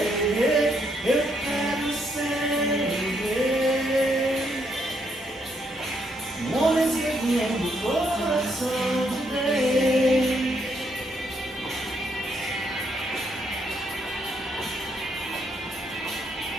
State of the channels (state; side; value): normal; both; correlation 0.74